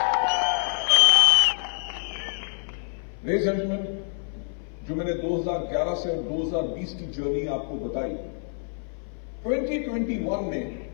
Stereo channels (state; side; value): silent; right; 58 dB below the other